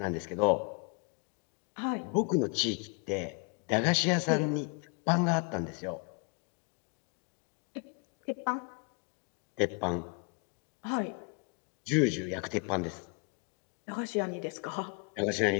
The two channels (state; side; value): quieter; right; 31.4 dB